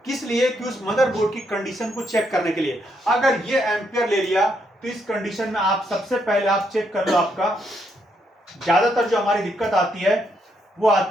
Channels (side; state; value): both; normal; correlation 0.76